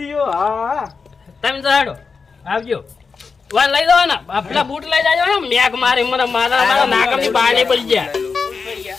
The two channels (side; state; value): right; quieter; 5.0 dB